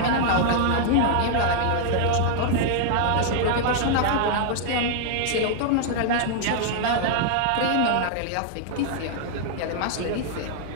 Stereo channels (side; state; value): both; different; correlation -0.01